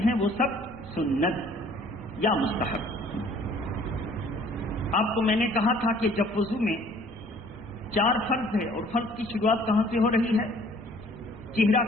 ہیں وہ سب سنت یا مستحب. آپ کو میں نے کہا تھا کہ جب وضو میں 4 فرض ہے اور فرض کی شروعات کہاں سے ہو رہی ہے؟ چہرہ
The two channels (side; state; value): left; noise; rumble, 27 dB below the sound